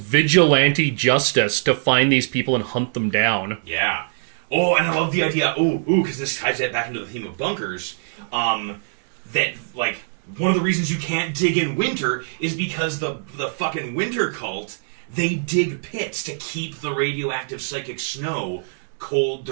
justice to find these people and hunt them down. Yeah. Oh, and I love the idea. Because this ties that back into the theme of bunkers. That like one of the reasons you can't dig in winter is because the fucking winter cult, they dig pits to keep the radioactive psychic snow cold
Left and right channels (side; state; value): left; silent; digital silence